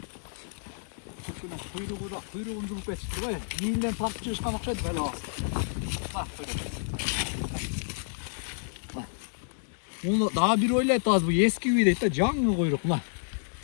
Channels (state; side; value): silent; right; digital silence